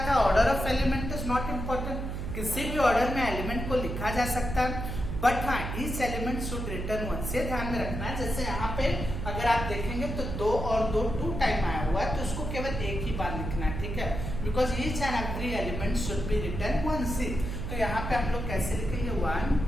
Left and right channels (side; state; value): right; noise; hum, 5 dB below the sound